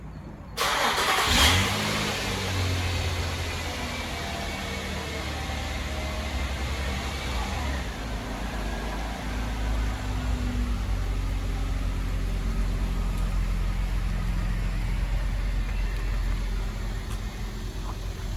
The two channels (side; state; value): both; identical; correlation 1.00